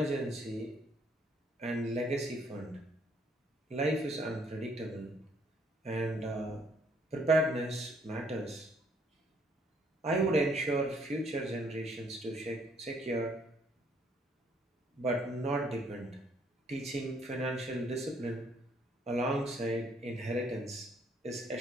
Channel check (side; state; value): both; normal; correlation 0.66